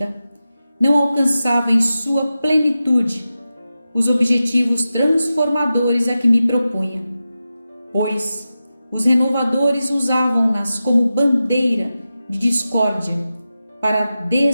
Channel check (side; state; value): both; inverted; correlation -0.92